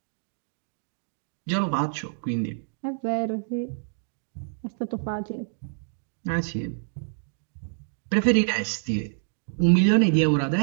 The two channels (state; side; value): silent; left; digital silence